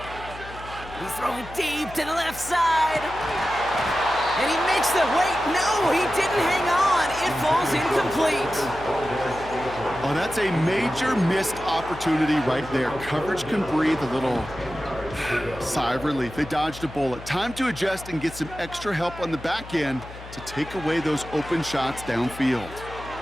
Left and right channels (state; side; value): noise; left; hum, 15 dB below the sound